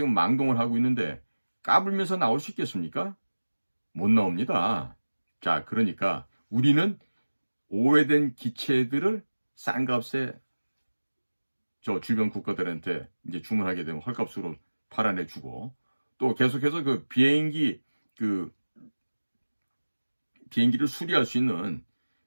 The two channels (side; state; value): both; inverted; correlation -1.00